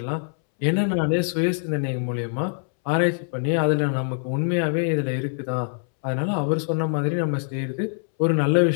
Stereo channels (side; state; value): right; silent; 63 dB below the other